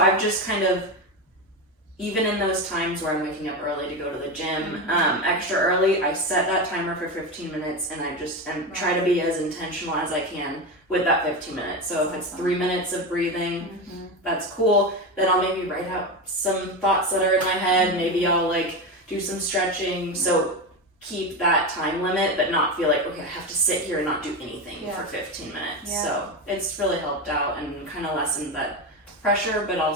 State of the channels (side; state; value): both; normal; correlation 0.18